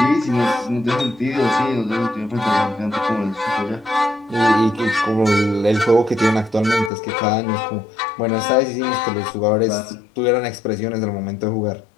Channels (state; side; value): drops out; right; at 6.9 s